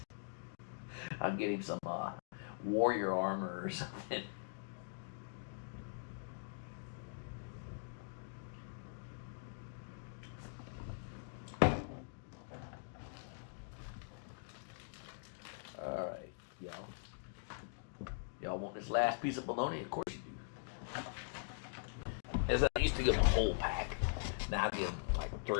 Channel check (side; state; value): right; silent; digital silence